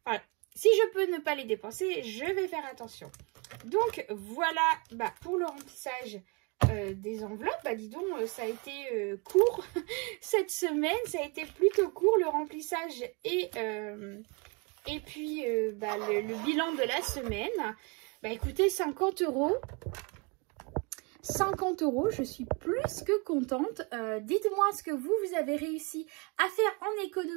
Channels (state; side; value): quieter; left; 31.2 dB